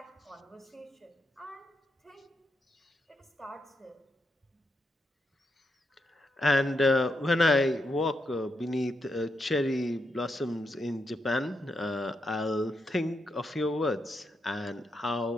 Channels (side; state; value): both; normal; correlation 0.82